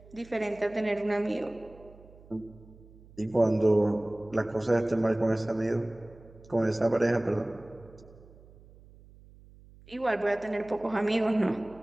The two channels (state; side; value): noise; right; hum, 23 dB below the sound